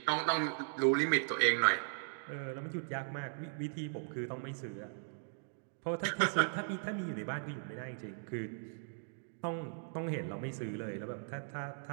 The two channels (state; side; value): silent; left; digital silence